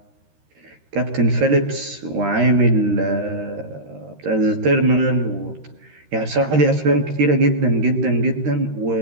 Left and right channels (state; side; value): late; left; 13 ms